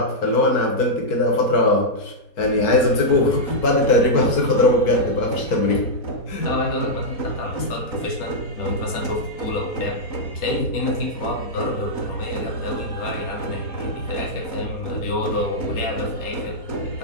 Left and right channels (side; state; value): right; late; 4.2 ms